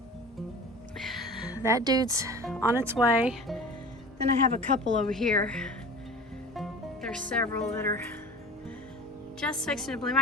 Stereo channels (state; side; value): normal; both; correlation 0.38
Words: That dude's on its way. Then I have a couple over here. There's several that are just fixing to bloom.